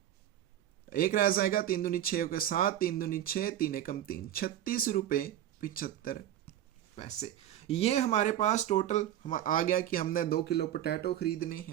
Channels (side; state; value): left; quieter; 11.7 dB